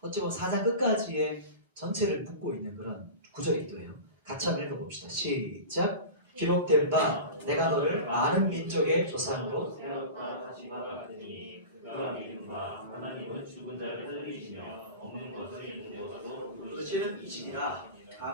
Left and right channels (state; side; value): inverted; both; correlation -0.30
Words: 보면 4장 끝까지의 전체를 묶고 있는 그런 구절이기도 해요. 같이 한번 읽어봅시다. 시작. 기록된 바 내가 너를 많은 민족의 조상으로 세웠다 하신 바가 같으니 그가 믿은 바 하나님은 죽은 자를 살리시며 없는 것을 있는 것으로 부르시는 이시니라.